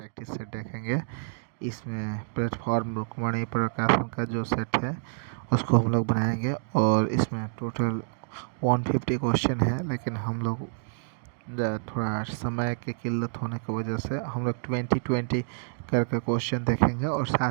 सेट देखेंगे। इसमें प्लेटफॉर्म रुक्मणी प्रकाशन का जो सेट है उसको हम लोग बनाएंगे और इसमें टोटल 150 क्वेश्चन है, लेकिन हम लोग थोड़ा समय की किल्लत होने की वजह से हम लोग 20-20 करके क्वेश्चन देखेंगे और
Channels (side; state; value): left; silent; digital silence